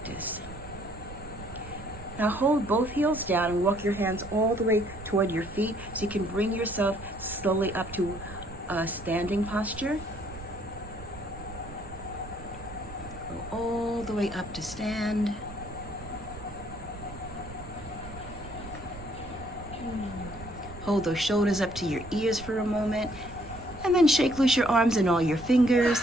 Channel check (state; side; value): noise; right; rumble, 14 dB below the sound